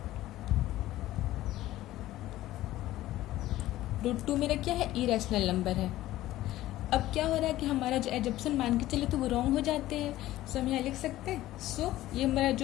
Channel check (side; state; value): right; quieter; 15.3 dB